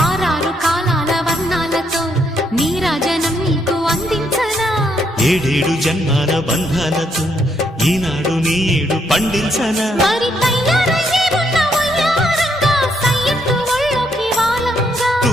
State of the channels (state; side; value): normal; both; correlation 0.74